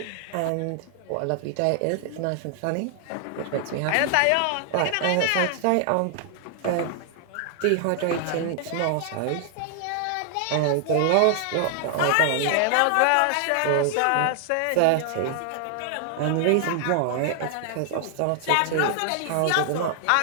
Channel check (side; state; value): both; different; correlation 0.00